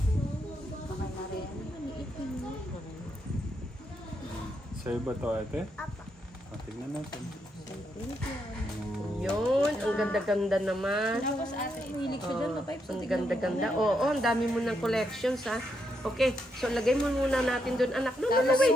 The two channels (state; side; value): normal; both; correlation 0.79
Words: Sa'yo ba to, ate? Apa. Tingnan natin. Yun, ang ganda-ganda naman. Tapos ate, Hilig siya dyan, mapipes. Ang ganda-ganda. Oo, ang dami mo ng collections ha. Okay, so lagay mo muna natin doon, anak. No,